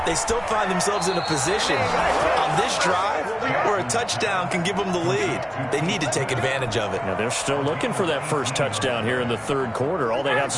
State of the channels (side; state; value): both; identical; correlation 1.00